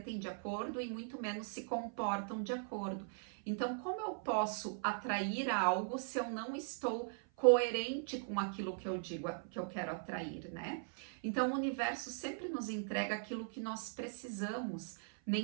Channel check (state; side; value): silent; left; 51 dB below the other